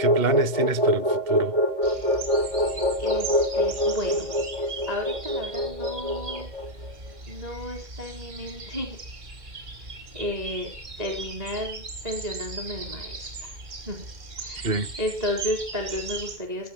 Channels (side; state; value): left; late; 2.1 ms